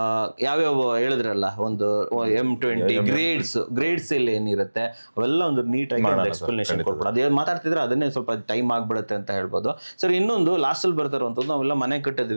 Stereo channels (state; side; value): inverted; both; correlation -1.00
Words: ಯಾವ್ಯಾವ ಹೇಳಿದ್ರಲ್ಲ, ಒಂದು M20 ಗ್ರೇಡ್ಸ್ ಇಲ್ಲಿ ಏನಿರುತ್ತೆ ಅವೆಲ್ಲ ಒಂದು ನೀಟಾಗಿ ಒಂದು ಎಕ್ಸ್ಪ್ಲನೇಷನ್ ಕೊಡ್ಬೋದು. ಅದೇ ಮಾತಾಡ್ತಿದ್ರೆ ಅದನ್ನೇ ಸ್ವಲ್ಪ ಟೈಮ್ ಆಗ್ಬಿಡುತ್ತೆ ಅಂತ ಹೇಳ್ಬೋದು ಸರ್. ಇನ್ನೊಂದು ಲಾಸ್ಟ್ ಅಲ್ಲಿ ಬರ್ತಾರಂತದ್ದು, ನಾವೆಲ್ಲ ಮನೆ